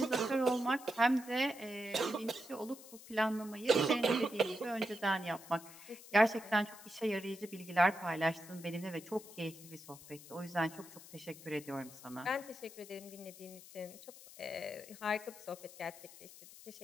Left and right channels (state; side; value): noise; left; hiss, 17 dB below the sound